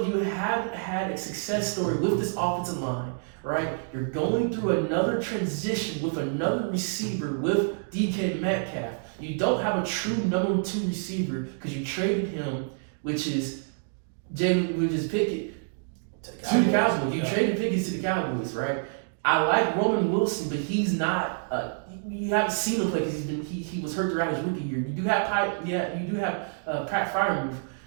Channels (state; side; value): silent; left; digital silence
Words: you haven't had a success story with this offensive line, right? You're going through another transition with another receiver with DK Metcalf. You don't have a true number 2 receiver because you traded him, which is Pickett, to the Cowboys. You traded Pickens to the Cowboys, right? I like Roman Wilson, but he's not. You haven't seen him play because he was hurt throughout his rookie year. You do have Pat Freiermuth.